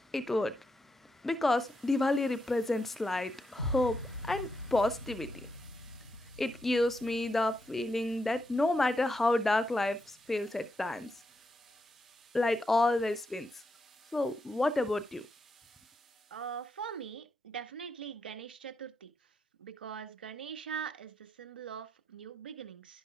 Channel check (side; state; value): both; normal; correlation 0.83